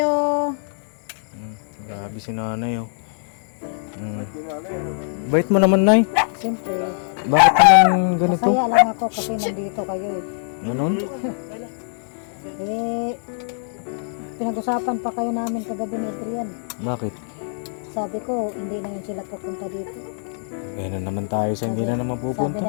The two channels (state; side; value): silent; right; digital silence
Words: Grabe si nanay oh. Bait mo naman, Nay. Siyempre, Bakit naman ganito? masaya lang ako kasi nandito kayo eh. Ganon? Eh, pinag-usapan pa kayo namin kagabi ni Adrian. Bakit? Sabi ko, hindi na yun sila pupunta dito. Ganun naman tayo sa hindi na naman